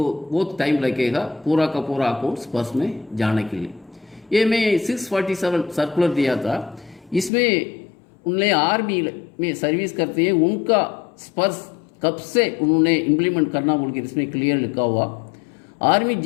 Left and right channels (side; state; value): right; drops out; at 7.3 s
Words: बहुत टाइम लगेगा पूरा का पूरा अकाउंट पर्स में जाने के लिए। ये मैं 647 सर्कुलर दिया था, इसमें उन्हें आर्मी में सर्विस करते हैं उनका स्पर्श कब से उन्होंने इम्प्लीमेंट करना बोल के इसमें क्लियर लिखा हुआ। Army